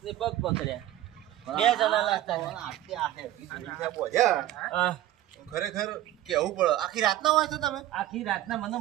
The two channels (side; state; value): left; quieter; 14.0 dB